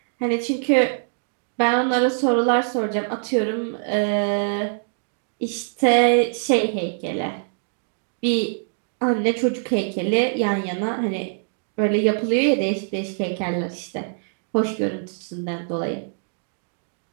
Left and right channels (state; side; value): silent; left; digital silence